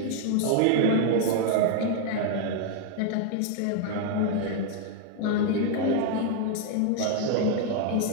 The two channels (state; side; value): different; both; correlation 0.00